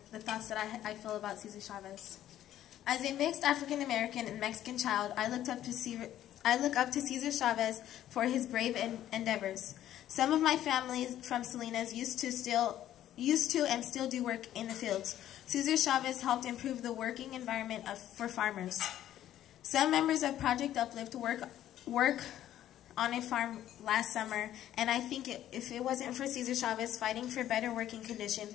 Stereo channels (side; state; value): right; quieter; 12.2 dB